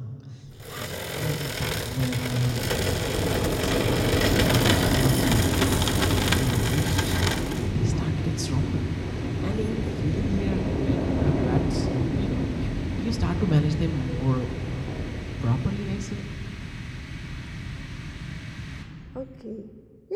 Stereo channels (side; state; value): both; identical; correlation 1.00